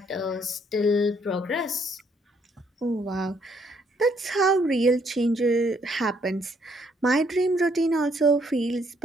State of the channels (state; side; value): normal; both; correlation 0.69